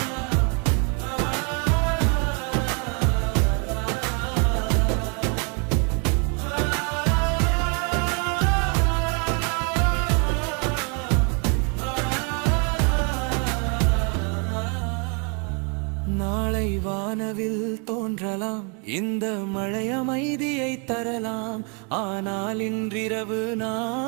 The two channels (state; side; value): quieter; left; 35.9 dB